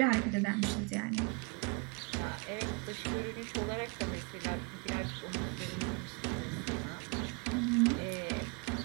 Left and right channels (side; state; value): left; quieter; 31.2 dB